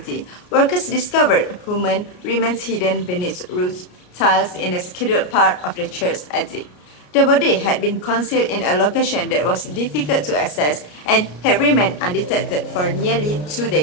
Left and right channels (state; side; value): late; right; 33 ms